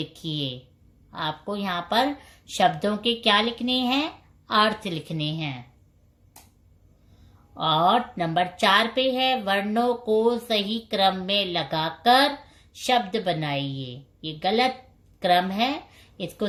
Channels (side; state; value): both; identical; correlation 1.00